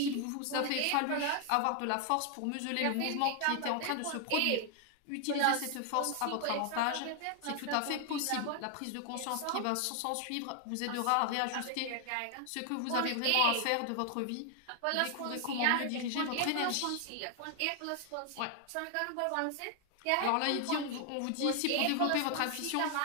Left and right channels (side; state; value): both; different; correlation 0.00